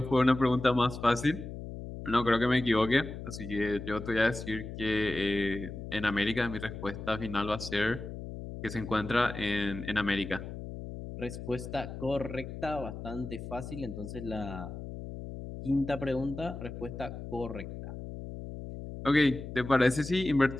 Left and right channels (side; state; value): left; noise; hum, 9 dB below the sound